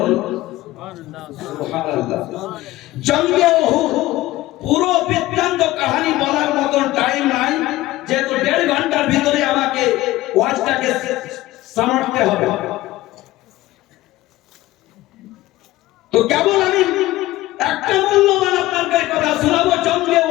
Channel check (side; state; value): right; quieter; 17.1 dB